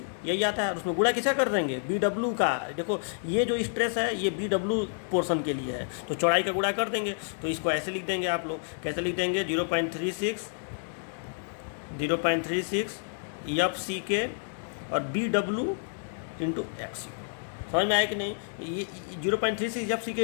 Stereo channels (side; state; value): right; silent; digital silence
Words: यही आता है। उसमें गुणा किसका कर देंगे? BW का। देखो ये जो स्ट्रेस है ये BW पोर्शन के लिए है, तो चौड़ाई का गुणा कर देंगे। तो इसको ऐसे लिख देंगे आप लोग, कैसे लिख देंगे, 0.36 FCK और BW इंटू XU। समझ में आया कि नहीं? ये 0.36 FCK